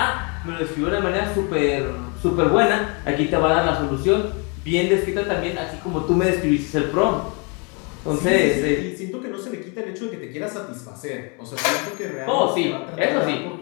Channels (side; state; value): right; quieter; 33.5 dB